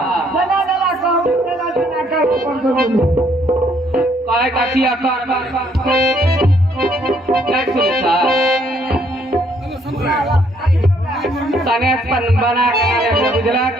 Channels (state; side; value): normal; both; correlation 0.67